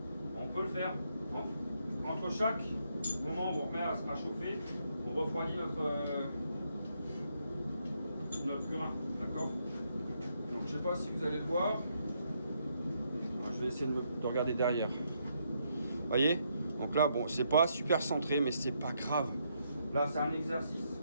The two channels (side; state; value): both; inverted; correlation -0.76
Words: On peut le faire. Entre chaque moment où on remet à chauffer, on refroidit notre burin. D'accord? Donc, je ne sais pas si vous allez le voir. Je vais essayer de regarder derrière. Vous voyez? Donc là, bon, c'est pas super centré, mais c'est pas grave. Là, c'est un exercice.